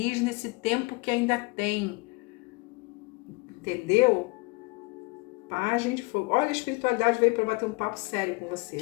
nesse tempo que ainda tem. Entendeu? Pagem de fogo. Olha, a espiritualidade veio para bater um papo sério com você,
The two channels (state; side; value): quieter; right; 27.2 dB